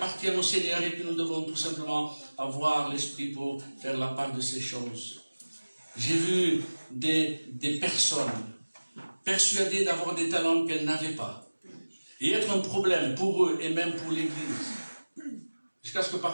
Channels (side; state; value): both; inverted; correlation -1.00